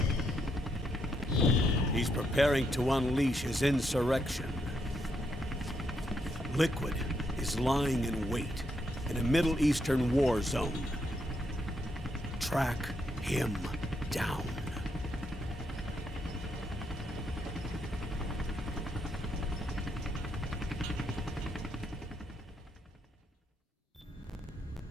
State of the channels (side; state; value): both; normal; correlation 0.78